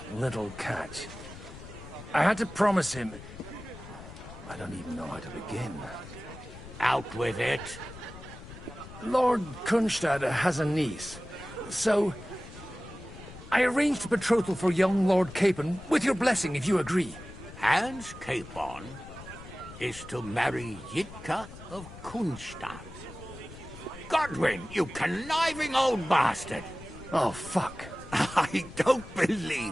little catch. I had to promise him... I don't even know how to begin. Out with it. Lord Kunstadt has a niece, so... I arranged a betrothal for young Lord Capon, with your blessing if you agree. Hans Capon is to marry Yitka of Kunstadt. Godwin, you conniving old bastard! Oh, fuck. I don't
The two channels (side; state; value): left; noise; rumble, 15 dB below the sound